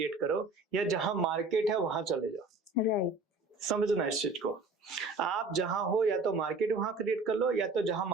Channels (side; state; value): left; quieter; 3.4 dB